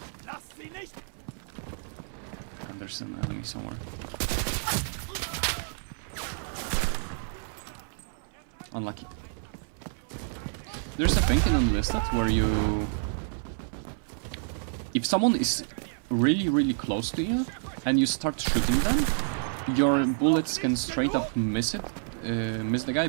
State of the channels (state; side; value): silent; left; 59 dB below the other